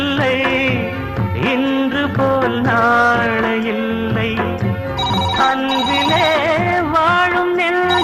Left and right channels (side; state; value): both; identical; correlation 1.00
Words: இன்று போல் நாளை இல்லை அன்பிலே வாழும்